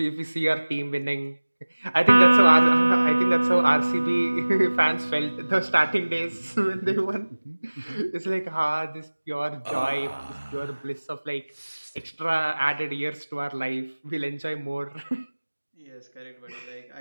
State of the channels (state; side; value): inverted; both; correlation -1.00